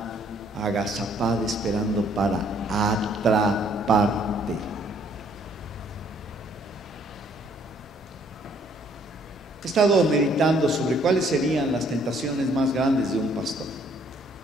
agazapada esperando para atraparte. He estado meditando sobre cuáles serían las tentaciones más grandes de un pastor.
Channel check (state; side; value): normal; both; correlation 0.64